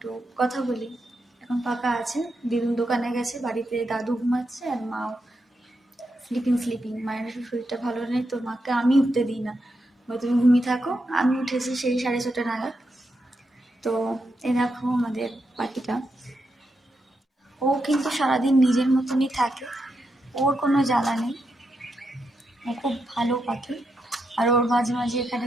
কথা বলি। এখন ফাঁকা আছে, দিদুন দোকানে গেছে, বাড়িতে দাদু ঘুমাচ্ছে আর মাও স্লিপিং। মায়ের শরীরটা ভালো নেই, তো মাকে আমি উঠতে দিই না, তুমি ঘুমিয়ে থাকো। আমি উঠেছি সেই 6:30 নাগাদ। তো এই দেখো আমাদের পাখিটা, ও কিন্তু সারাদিন নিজের মতনই থাকে, ওর কোনো জ্বালা নেই, ও খুব ভালো পাখি। আর ওর মাঝে মাঝে এখানে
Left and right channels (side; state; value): both; normal; correlation 0.84